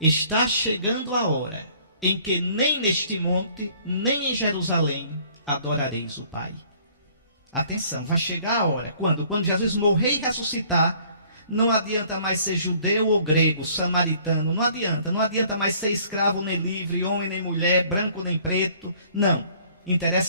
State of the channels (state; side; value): inverted; both; correlation -0.57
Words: Está chegando a hora em que nem neste monte, nem em Jerusalém, adorareis o Pai. Atenção, vai chegar a hora. Quando? Quando Jesus morrer e ressuscitar, não adianta mais ser judeu ou grego, samaritano, não adianta mais ser escravo nem livre, homem nem mulher, branco nem preto, não.